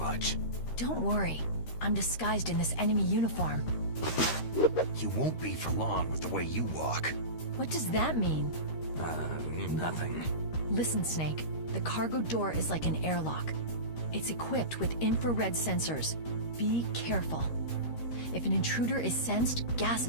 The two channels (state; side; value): late; right; 13 ms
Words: Don't worry. I'm disguised in this enemy uniform. You won't be for long with the way you walk. What does that mean? Nothing. Listen, Snake. The cargo door is like an airlock. It's equipped with infrared sensors. Be careful. If an intruder is sensed, gas